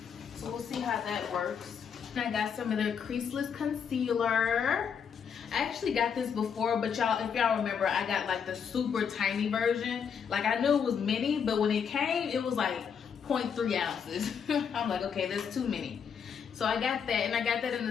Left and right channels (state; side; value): quieter; right; 7.1 dB